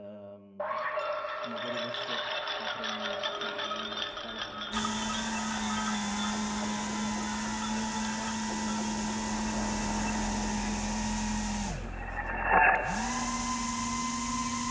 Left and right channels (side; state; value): both; identical; correlation 1.00